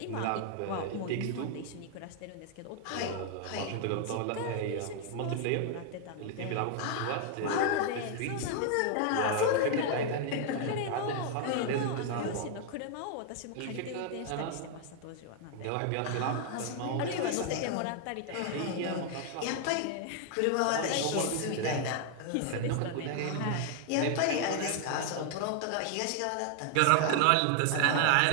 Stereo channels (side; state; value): both; different; correlation 0.00